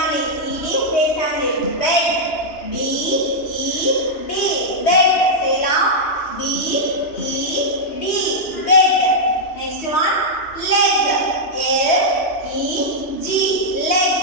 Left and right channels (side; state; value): right; late; 3.2 ms